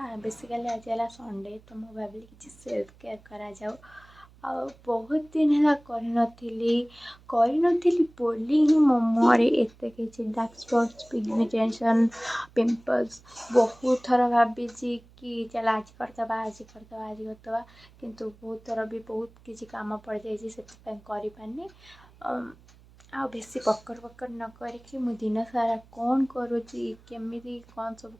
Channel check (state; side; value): noise; right; hum, 25 dB below the sound